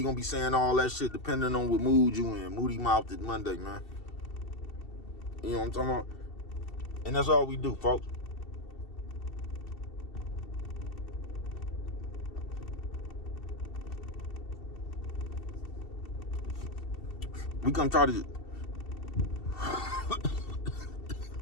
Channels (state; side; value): late; right; 2.7 ms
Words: going to be saying all that shit depending on what mood you in. Moody Mouthed Monday, man. You know what I'm talking about? And that's all we do, folks. We come try to...